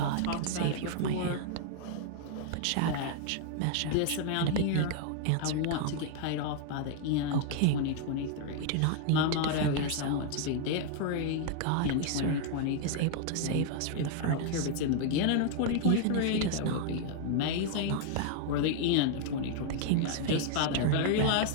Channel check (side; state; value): both; different; correlation 0.00